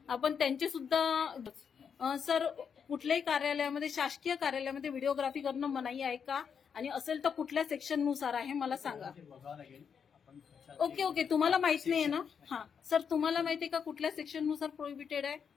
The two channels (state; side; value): quieter; right; 6.9 dB